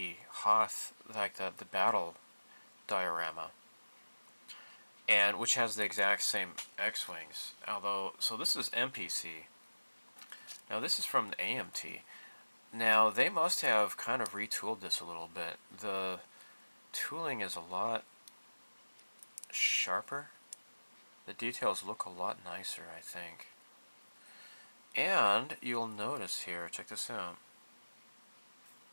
Hoth, like the battle diorama, and which has the exact same X-Wings. Although, so this is MPC. Now this is from the AMT. Now they must have kind of retooled this a little bit. The tooling is a lot sharper. The details look a lot nicer, I think. And you'll notice here, check this out.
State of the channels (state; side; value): inverted; both; correlation -1.00